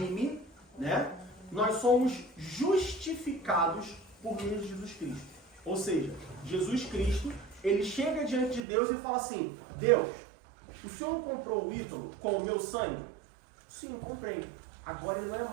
né, nós somos justificados por meio de Jesus Cristo. Ou seja, Jesus Cristo, ele chega diante de Deus e fala assim, Deus, o Senhor não comprou o Ítalo com o meu sangue? Sim, comprei. Agora ele não é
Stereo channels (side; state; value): left; drops out; at 8.7 s